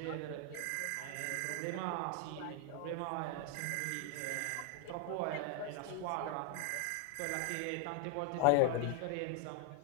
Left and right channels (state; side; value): different; both; correlation 0.00